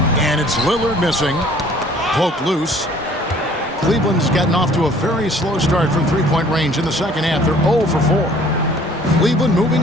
And it's Lillard missing. Poke loose. Cleveland's gotten off to a very slow start from three-point range in the second half. They're 0 for 4. Cleveland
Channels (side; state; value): both; normal; correlation 0.55